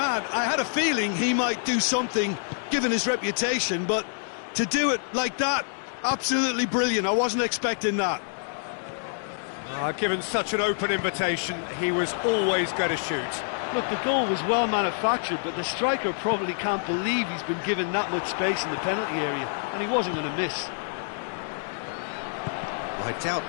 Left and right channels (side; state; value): right; silent; digital silence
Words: I had a feeling he might do something, given his reputation, but to do it like that, absolutely brilliant. I wasn't expecting that. Given such an open invitation, he was always going to shoot. Look, the goal was well manufactured, but the striker probably can't believe he's been given that much space in the penalty area, and he wasn't going to miss. I doubt